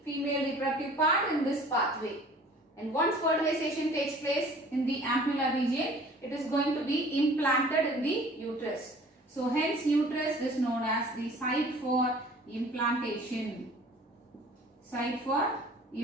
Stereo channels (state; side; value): normal; both; correlation 0.49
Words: female reproductive part in this pathway. And once fertilization takes place in the ampulla region, it is going to be implanted in the uterus. So hence uterus is known as the site for implantation. Site for